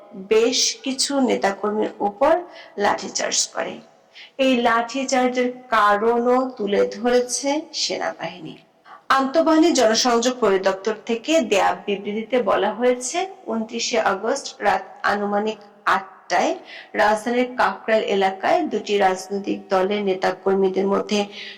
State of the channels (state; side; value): identical; both; correlation 1.00